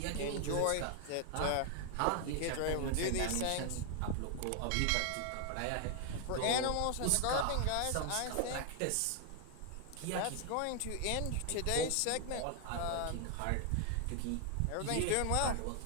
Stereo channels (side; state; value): both; different; correlation 0.00